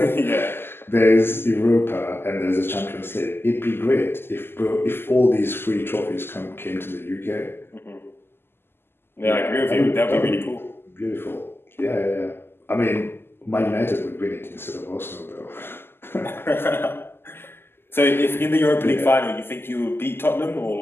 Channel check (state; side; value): late; right; 0.11 ms